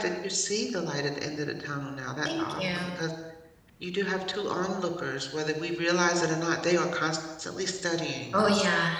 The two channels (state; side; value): identical; both; correlation 1.00